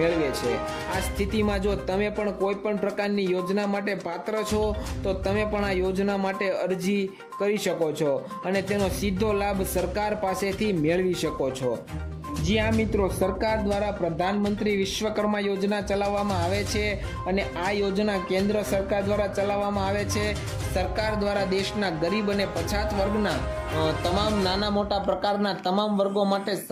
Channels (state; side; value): identical; both; correlation 1.00